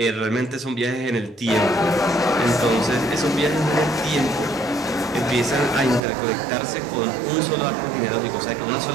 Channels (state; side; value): drops out; left; at 6.0 s